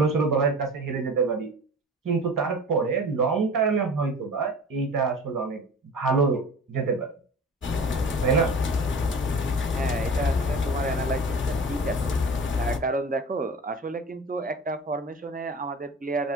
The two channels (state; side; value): normal; both; correlation 0.38